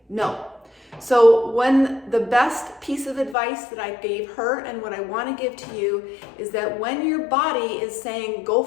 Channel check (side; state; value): right; drops out; at 3.4 s